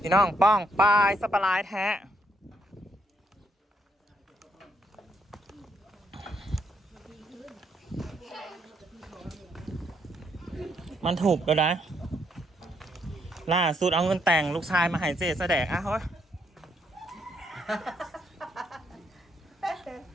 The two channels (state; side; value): normal; both; correlation 0.74